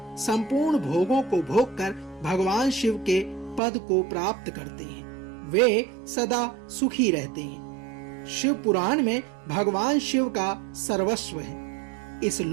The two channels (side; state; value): left; drops out; at 3.6 s